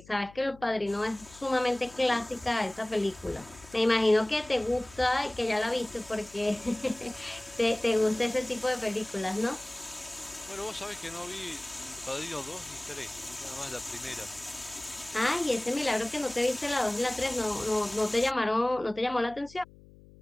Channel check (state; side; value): noise; left; hum, 22 dB below the sound